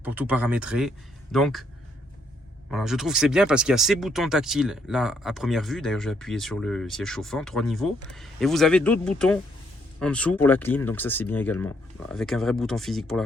pour tout paramétrer. Donc, voilà, je trouve que c'est bien parce qu'il y a ces boutons tactiles là à première vue. D'ailleurs, j'ai appuyé sur le siège chauffant, 3 niveaux. Et vous avez d'autres boutons en dessous pour la clim, donc ça c'est bien également. Avec un vrai bouton physique pour la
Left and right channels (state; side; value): normal; both; correlation 0.71